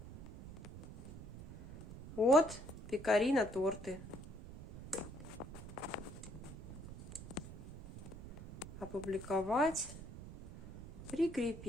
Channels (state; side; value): noise; right; rumble, 13 dB below the sound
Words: Вот, пекари на торты. Опубликовать.